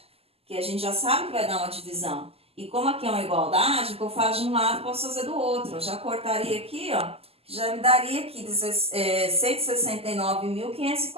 Que a gente já sabe que vai dar uma divisão. E como aqui é uma igualdade, o que eu faço de um lado, posso fazer do outro. Eu já cortaria aqui, ó, já me daria aqui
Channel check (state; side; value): late; left; 0.29 ms